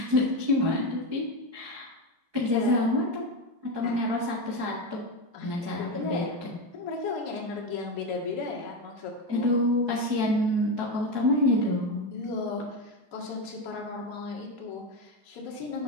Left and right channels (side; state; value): left; late; 4.7 ms